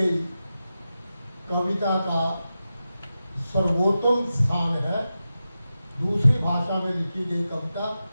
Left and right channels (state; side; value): inverted; both; correlation -0.92